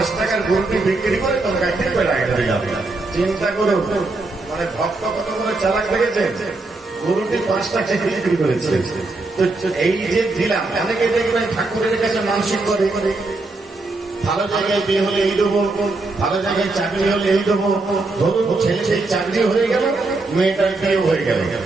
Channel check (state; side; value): quieter; left; 3.2 dB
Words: টাকার গরুটি বিক্রি করে তোমাকে একটি পেড়া এনে যাবে। চিন্তা করো, মানে ভক্ত কত করে চালাক লেগেছে, গরুটি ৫ টাকা বিক্রি করেছে। তো এই যে দিলাম, অনেকে দেখবেন ঠাকুরের কাছে মানসিক করে, ভালো জায়গায় বিয়ে হলে এই দেবো, ভালো জায়গায় চাকরি হলে এই দেবো। ধরুন ছেলে সেই চাকরি হয়ে গেল, মেয়েটার বিয়ে হয়ে গেল,